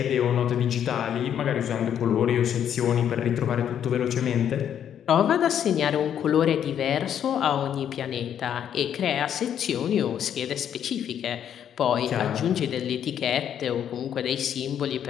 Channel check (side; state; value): right; quieter; 9.4 dB